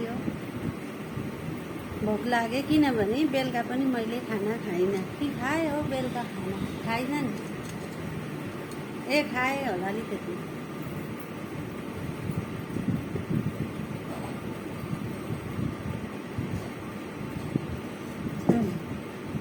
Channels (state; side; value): identical; both; correlation 1.00